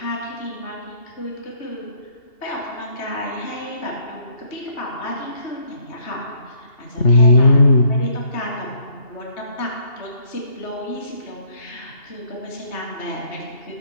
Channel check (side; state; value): right; late; 2.8 ms